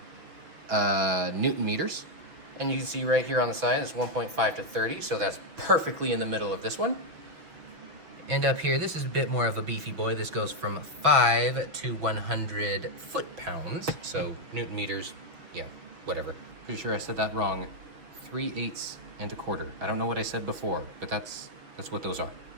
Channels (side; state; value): left; late; 6.1 ms